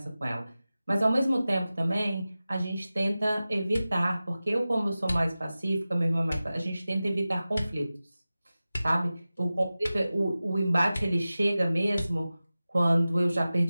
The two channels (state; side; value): inverted; both; correlation -0.96